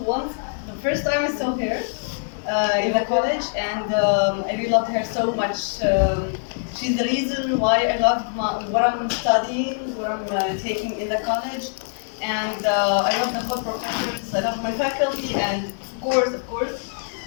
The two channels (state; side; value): silent; right; 63 dB below the other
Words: once. The first time I saw her in the college, and I really loved her so much. She's the reason why I love what I'm studying, what I'm taking in the college, and I love the whole professors. I love my faculty, and of course,